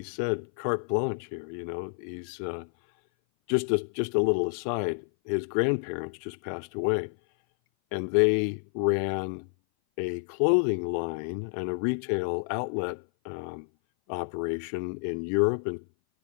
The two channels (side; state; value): right; silent; 57 dB below the other